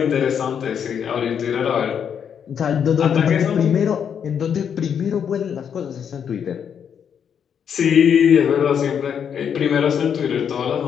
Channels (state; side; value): quieter; right; 7.9 dB